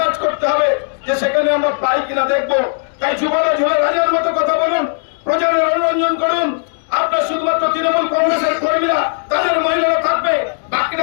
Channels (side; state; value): right; silent; 69 dB below the other